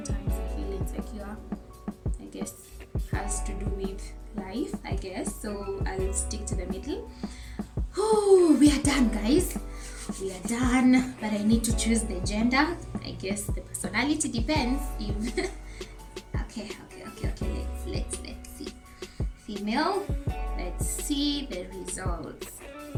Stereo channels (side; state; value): both; identical; correlation 1.00